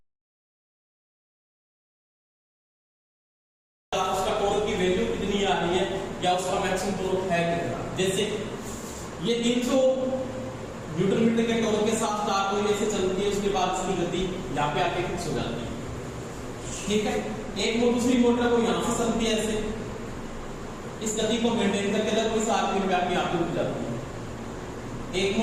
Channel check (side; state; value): both; identical; correlation 1.00